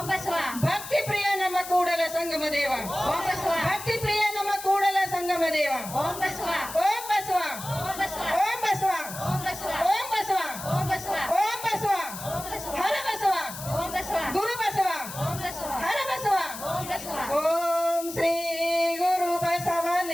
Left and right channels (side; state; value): left; noise; hiss, 11 dB below the sound